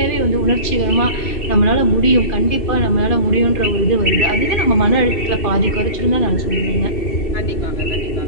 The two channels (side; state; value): right; late; 2.8 ms